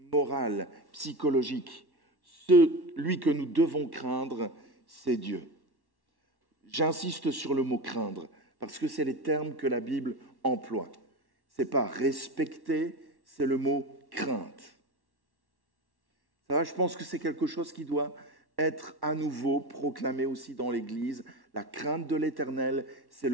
morale, psychologique. Celui que nous devons craindre, c'est Dieu. J'insiste sur le mot « craindre » parce que c'est les termes que la Bible emploie. Ce n'est pas « respecter », c'est le mot « crainte ». Ça va, je pense que c'est quelque chose qui doit être à nouveau proclamé aussi dans l'Église. La crainte de l'Éternel, c'est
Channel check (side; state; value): left; late; 1.1 ms